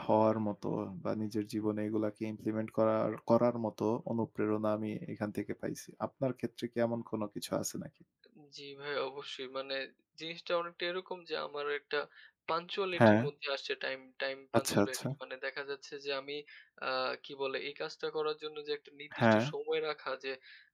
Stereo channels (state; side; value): identical; both; correlation 1.00